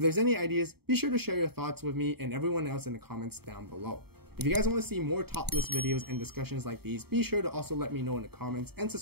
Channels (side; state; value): left; late; 0.96 ms